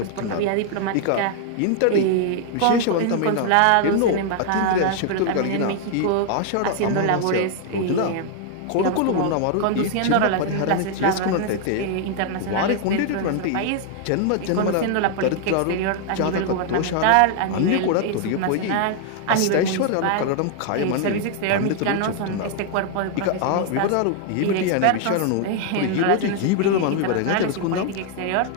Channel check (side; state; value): both; different; correlation 0.00